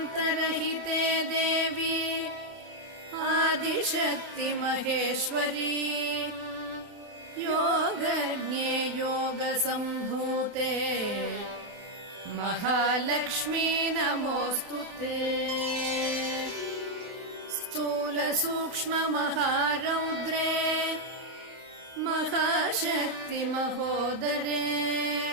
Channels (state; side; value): late; left; 29 ms